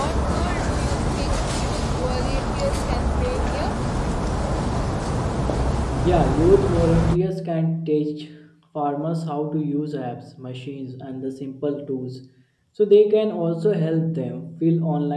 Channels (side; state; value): both; identical; correlation 1.00